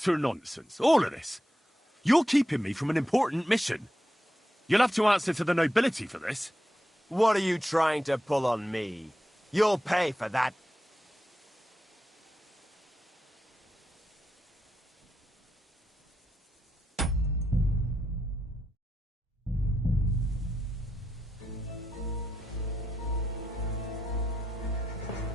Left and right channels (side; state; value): both; normal; correlation 0.86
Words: nonsense, all of this. You're keeping me from an important mission. You'll have to answer to the nobility for this. What are you trying to pull on me? You'll pay for that.